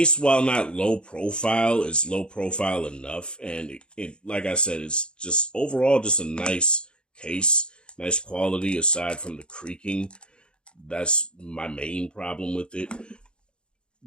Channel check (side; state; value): right; late; 0.052 ms